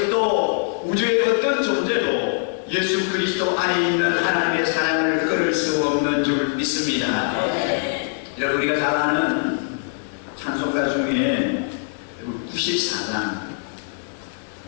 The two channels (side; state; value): right; silent; 64 dB below the other